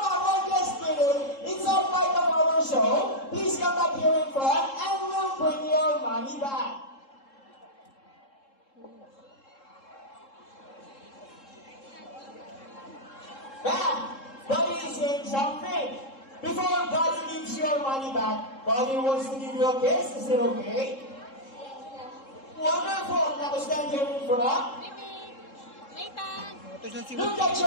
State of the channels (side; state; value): right; late; 3.7 ms